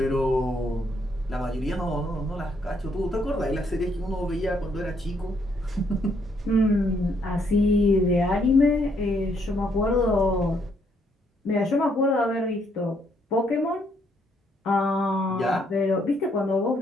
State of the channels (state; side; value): normal; both; correlation 0.71